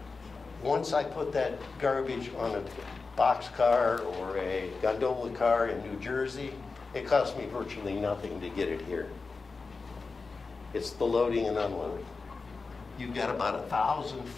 Once I put that garbage on a boxcar or a gondola car in New Jersey, it costs me virtually nothing to get it here. It's the loading and unloading. You've got about 1,000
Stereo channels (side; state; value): right; quieter; 4.3 dB